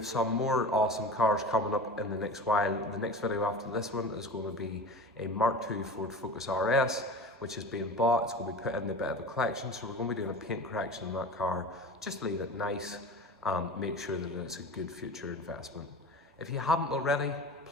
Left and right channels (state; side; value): normal; both; correlation 0.34